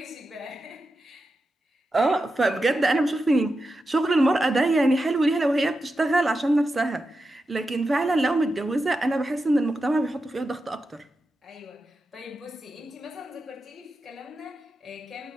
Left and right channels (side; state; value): both; normal; correlation 0.90